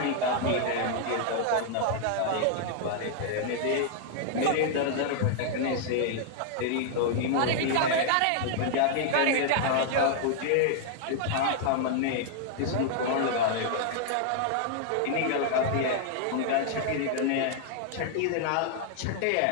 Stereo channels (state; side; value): different; both; correlation 0.00